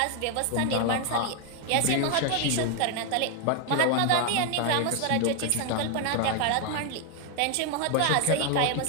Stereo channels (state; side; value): different; both; correlation 0.01